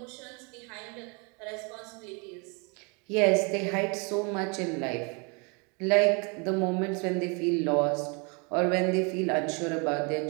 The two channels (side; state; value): left; quieter; 32.7 dB